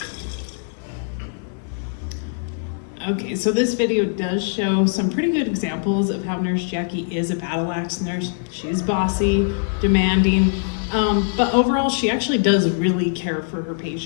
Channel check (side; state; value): right; silent; 61 dB below the other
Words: Okay, so this video does show some pretty good examples of how Nurse Jackie is a battle axe nurse. She's bossy, demanding, but overall she actually does really care for her